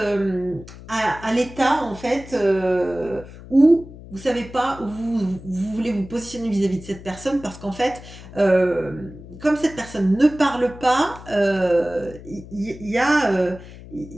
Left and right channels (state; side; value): noise; left; hum, 16 dB below the sound